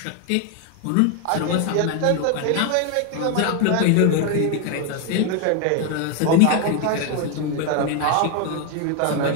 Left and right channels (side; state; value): both; different; correlation 0.01